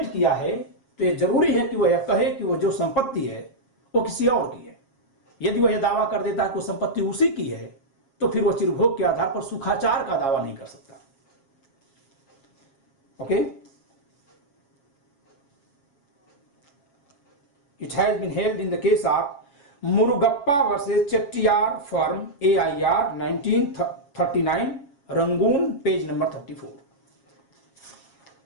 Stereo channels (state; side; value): late; right; 7.2 ms